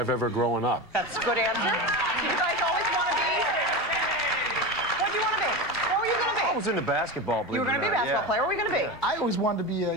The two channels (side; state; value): both; normal; correlation 0.23